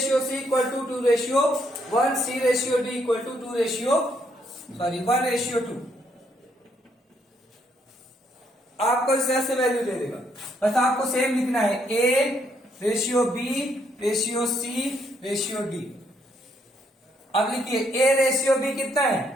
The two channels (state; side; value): normal; both; correlation 0.72